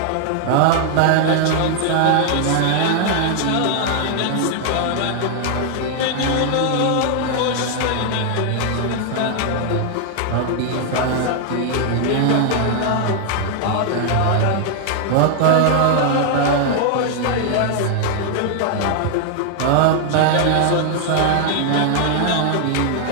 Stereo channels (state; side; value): different; both; correlation 0.00